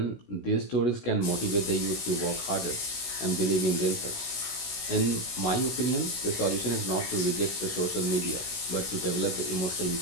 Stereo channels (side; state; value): right; late; 16 ms